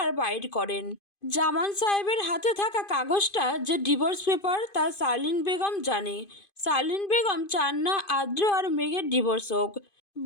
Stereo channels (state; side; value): late; right; 2.5 ms